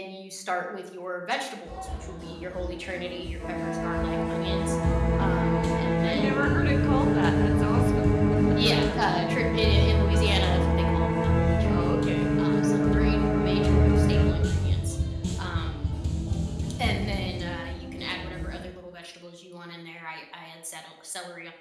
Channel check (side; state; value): both; identical; correlation 1.00